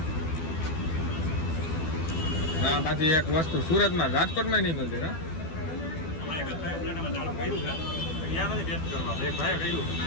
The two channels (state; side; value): late; right; 12 ms